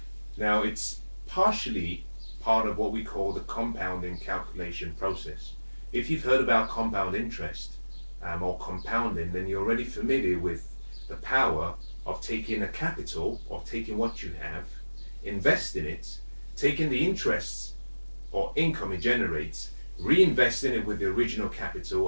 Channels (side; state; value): both; inverted; correlation -1.00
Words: Now, it's partially part of what we call the compounding calculation process. If you've heard about compound interest or compounding, then you're already familiar with the power of taking a capital, of taking what you have, investing it, taking the interests or income it generates, reinvesting it with the original